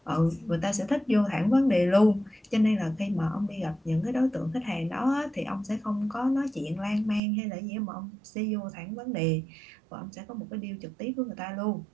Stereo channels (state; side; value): drops out; left; at 7.2 s